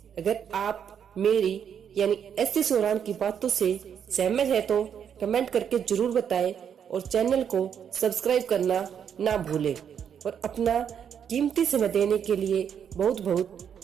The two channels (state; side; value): quieter; left; 8.1 dB